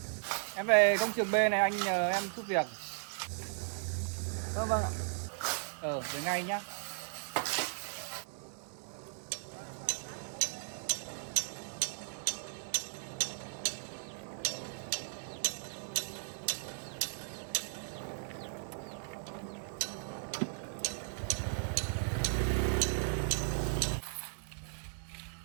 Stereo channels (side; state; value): left; silent; digital silence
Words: Em về công trường B này anh nhờ em giúp việc. Vâng ạ. Về ngay nhá.